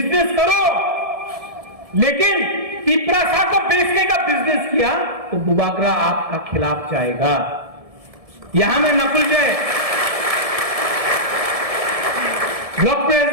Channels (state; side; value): late; left; 1.7 ms